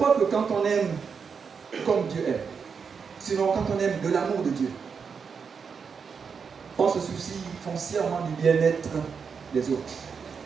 que quand on aime comme Dieu aime, sinon quand on aime de l'amour de Dieu, on se soucie foncièrement du bien-être des autres.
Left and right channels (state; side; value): quieter; left; 6.0 dB